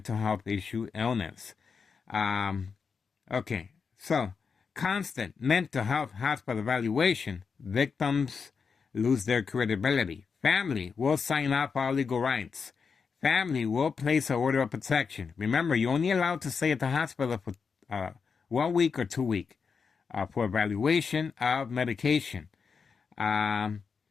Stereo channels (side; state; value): right; quieter; 5.6 dB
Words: health issue illness. Okay, so constant mental health hospital evaluation, victims lose their credibility. Family will sign up for all legal rights. Family will place an order of protection. Remember, you're only allowed to stay at the hospital for 1 week or 2 weeks for evaluation of medication. And